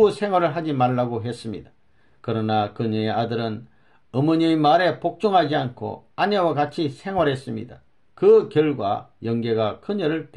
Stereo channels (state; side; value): identical; both; correlation 1.00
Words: 생활을 하지 말라고 했습니다. 그러나 그녀의 아들은 어머니의 말에 복종하지 않고 아내와 같이 생활했습니다. 그 결과 영계가 그녀를